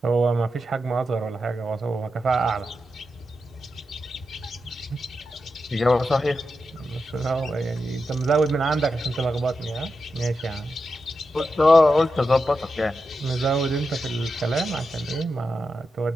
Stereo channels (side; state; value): both; normal; correlation 0.88